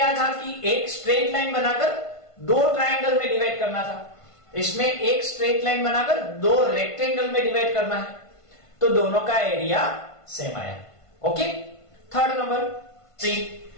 था कि एक स्ट्रेट लाइन बनाकर दो ट्रायंगल में डिवाइड करना था, इसमें एक स्ट्रेट लाइन बनाकर दो रेक्टेंगल में डिवाइड करना है, तो दोनों का एरिया सेम आया। Okay, third number C,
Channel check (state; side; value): late; right; 1.5 ms